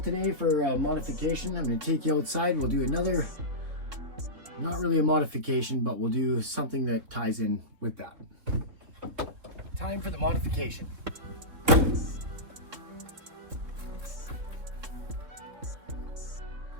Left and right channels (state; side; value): late; left; 3.7 ms